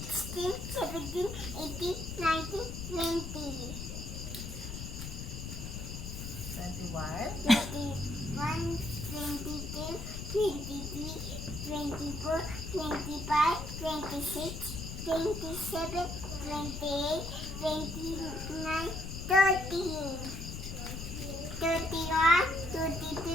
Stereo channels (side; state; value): left; noise; rumble, 7 dB below the sound